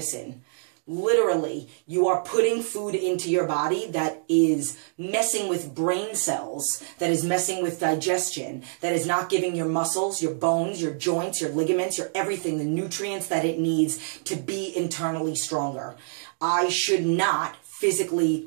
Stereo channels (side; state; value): left; silent; digital silence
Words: Literally, you are putting food into your body that is messing with brain cells, that is messing with digestion, that is not giving your muscles, your bones, your joints, your ligaments, your everything, the nutrients that it needs to be internally stronger. I should not physically